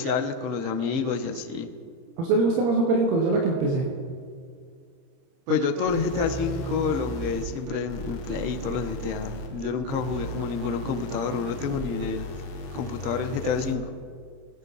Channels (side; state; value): left; late; 30 ms